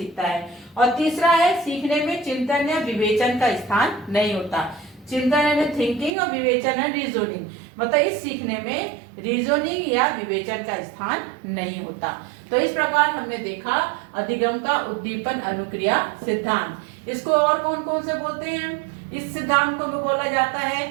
है। और तीसरा है सीखने में चिंतन या विवेचन का स्थान नहीं होता। चिंतन यानी थिंकिंग और विवेचन है रीजनिंग, मतलब इस सीखने में रीजनिंग या विवेचन का स्थान नहीं होता। तो इस प्रकार हमने देखा अधिगम का उद्दीपन अनुक्रिया सिद्धांत। इसको और कौन कौन से बोलते हैं? इस सिद्धांत को बोला जाता है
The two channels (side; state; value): left; drops out; at 6.1 s